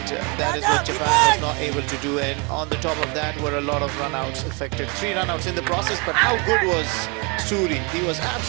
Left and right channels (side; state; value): left; quieter; 31.2 dB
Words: that is what Japan was not able to do. And on the top of that were a lot of run-outs affected. 3 run-outs in the process, but how good was Suri? He was